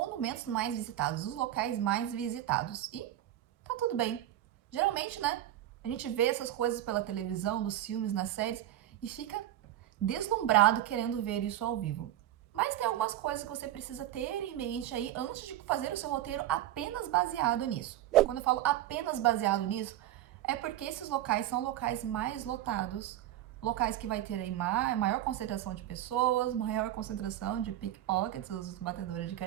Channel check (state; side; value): quieter; left; 12.9 dB